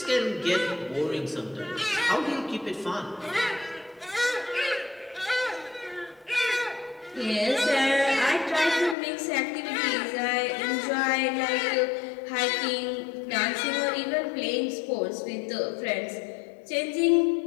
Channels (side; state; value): right; drops out; at 9.0 s